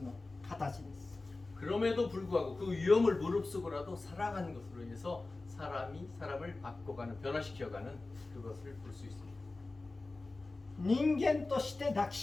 形です。 그럼에도 불구하고 그 위험을 무릅쓰고라도 살아가는 것으로 인해서 사람이 사람을 바꿔가는 변화시켜가는 그것을 볼 수 있습니다. 人間として抱き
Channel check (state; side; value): quieter; right; 3.3 dB